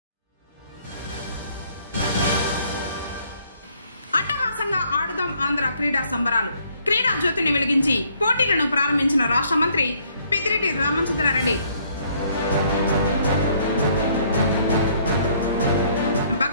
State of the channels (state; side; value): inverted; both; correlation -0.64